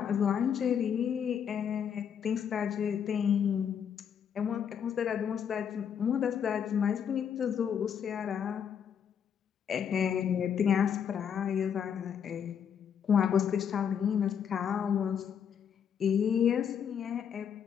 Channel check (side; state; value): right; quieter; 8.0 dB